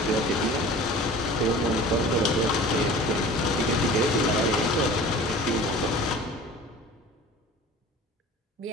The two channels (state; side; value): normal; both; correlation 0.42